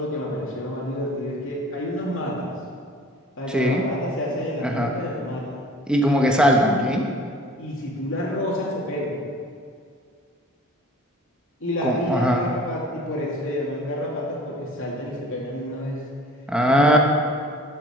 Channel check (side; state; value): both; normal; correlation 0.48